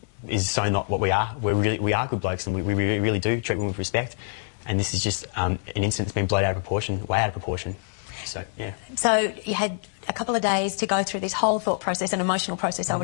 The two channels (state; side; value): silent; right; digital silence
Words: is so not what we are. We are good blokes, and we really do treat women with respect. And this is just an incident that's been blown out of proportion, way out of proportion. So, yeah. So you had a couple of days to go through this whole thought process and emotional process, I